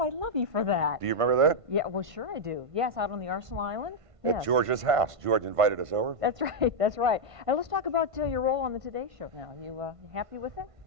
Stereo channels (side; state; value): left; late; 1.5 ms